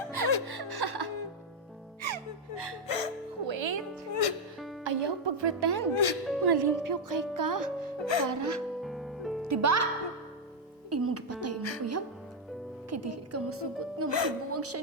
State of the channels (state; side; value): normal; both; correlation 0.01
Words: Wait. Ayaw pag-pretend. Mga limpyo kay ka. Para. Diba? Imong gipatay mo, uyab. Kay dili ka masugot nga masibuwag